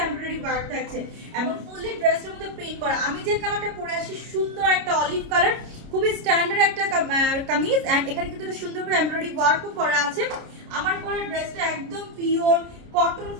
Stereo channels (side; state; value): left; late; 29 ms